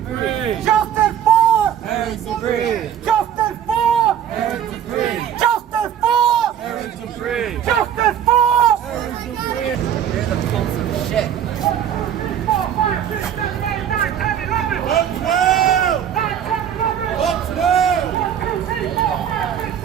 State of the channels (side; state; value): left; quieter; 9.4 dB